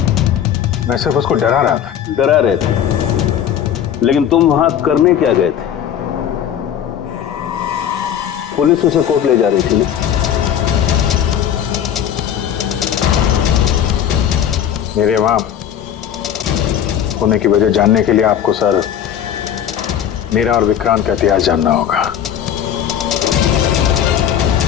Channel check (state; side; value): quieter; right; 9.5 dB